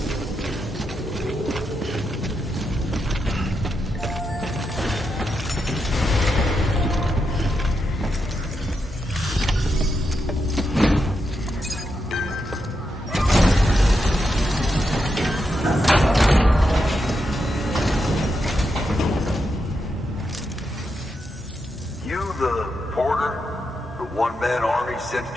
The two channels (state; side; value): normal; both; correlation 0.85